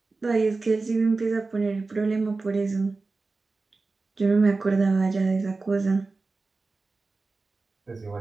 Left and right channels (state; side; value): quieter; left; 3.7 dB